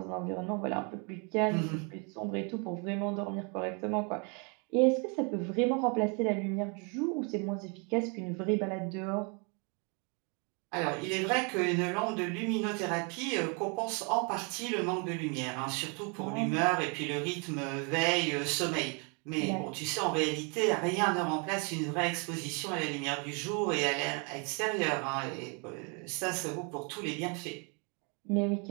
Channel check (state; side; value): quieter; left; 34.7 dB